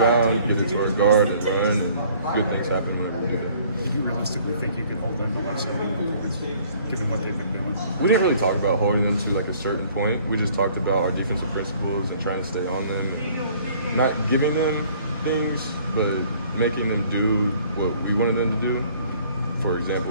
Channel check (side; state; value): both; inverted; correlation -0.56